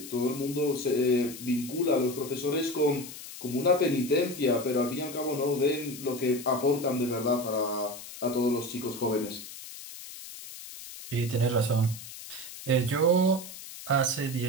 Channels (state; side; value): noise; left; hiss, 13 dB below the sound